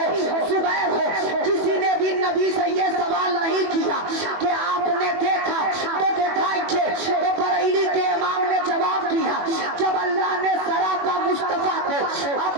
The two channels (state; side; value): late; left; 21 ms